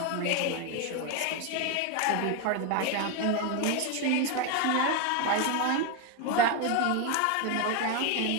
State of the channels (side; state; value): both; different; correlation 0.02